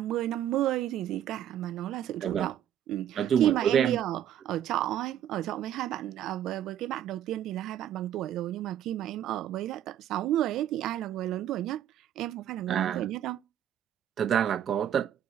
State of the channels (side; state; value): left; quieter; 10.7 dB